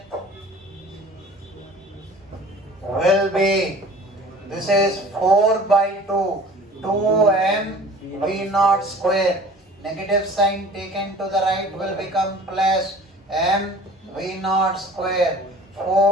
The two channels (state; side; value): normal; both; correlation 0.45